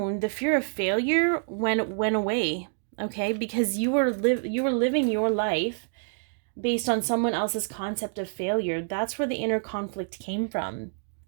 the fear of failure went away. Okay, because you were living your life based on someone else's concept of failure. That's where the inner conflict came from.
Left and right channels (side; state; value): left; silent; digital silence